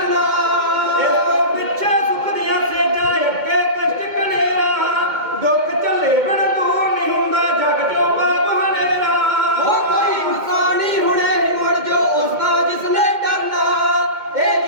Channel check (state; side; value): late; left; 2.2 ms